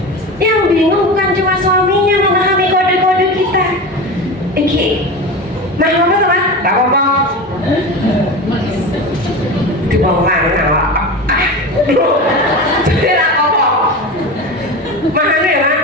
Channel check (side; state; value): both; normal; correlation 0.27